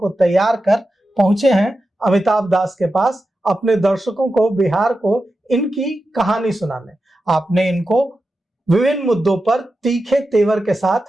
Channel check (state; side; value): normal; both; correlation 0.91